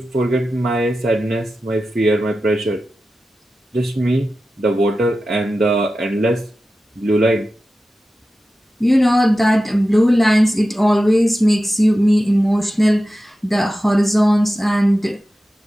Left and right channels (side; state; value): both; normal; correlation 0.93